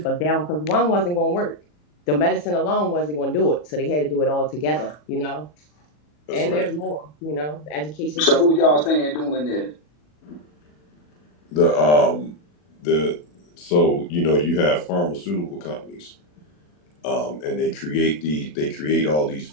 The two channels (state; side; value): late; right; 40 ms